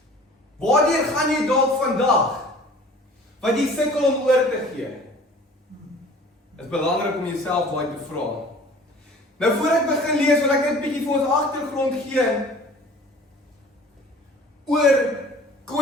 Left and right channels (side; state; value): both; normal; correlation 0.47